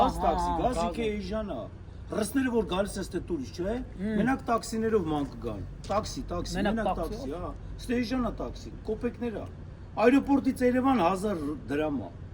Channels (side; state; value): both; identical; correlation 1.00